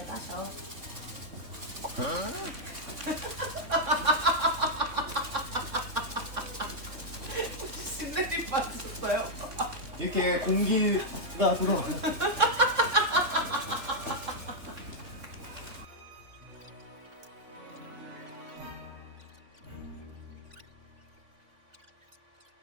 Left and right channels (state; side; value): late; left; 3.6 ms